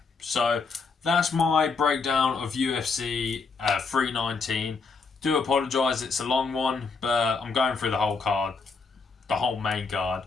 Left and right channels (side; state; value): right; quieter; 4.6 dB